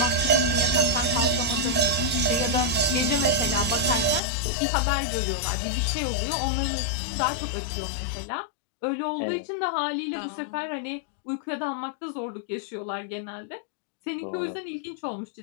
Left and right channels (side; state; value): right; drops out; at 4.2 s